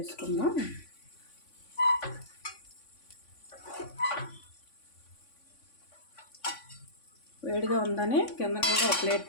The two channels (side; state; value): right; late; 3.5 ms